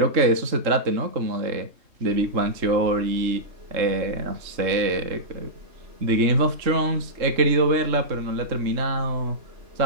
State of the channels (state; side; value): late; left; 3.7 ms